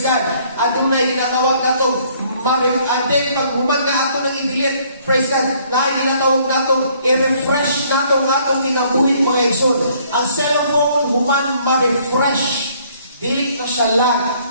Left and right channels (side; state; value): both; inverted; correlation -0.62